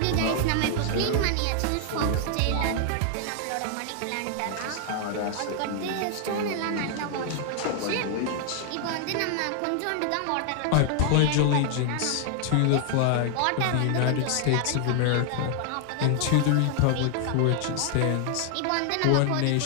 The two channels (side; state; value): both; different; correlation 0.00